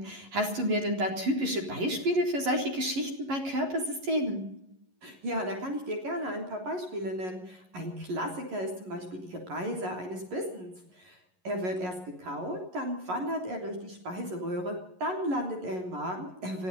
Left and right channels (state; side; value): late; left; 11 ms